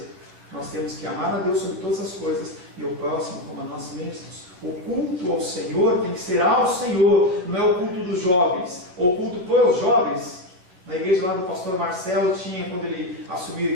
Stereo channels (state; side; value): late; left; 11 ms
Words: Nós temos que amar a Deus sobre todas as coisas e o próximo como a nós mesmos. O culto ao Senhor tem que ser ao Senhor, não é o culto dos jovens. O culto para os jovens. Na igreja lá do pastor Marcelo tinha, quando ele assumiu a